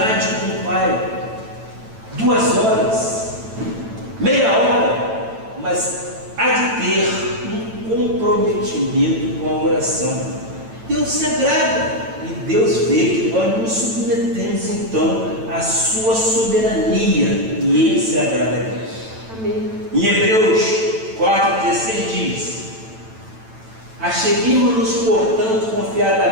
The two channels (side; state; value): left; late; 9.0 ms